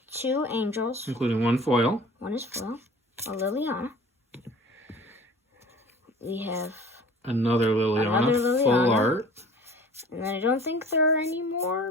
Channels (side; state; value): both; normal; correlation 0.45